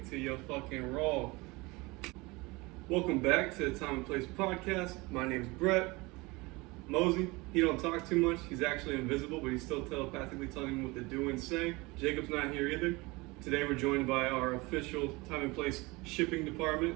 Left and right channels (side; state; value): left; quieter; 23.9 dB